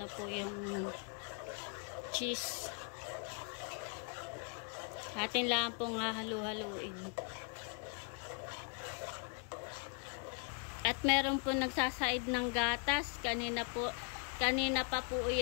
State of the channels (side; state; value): right; quieter; 39.4 dB